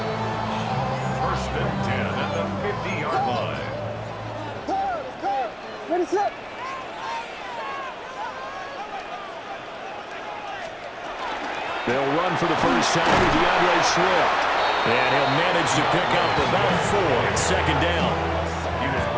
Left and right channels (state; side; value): identical; both; correlation 1.00